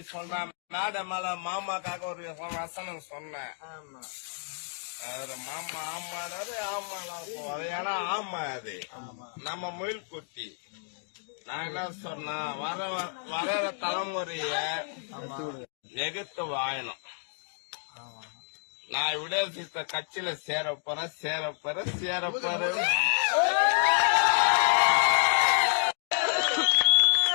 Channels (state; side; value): silent; right; 57 dB below the other